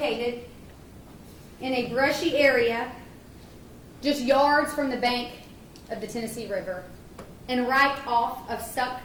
in a brushy area just yards from the bank of the Tennessee River and right off of Suck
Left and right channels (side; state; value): both; identical; correlation 1.00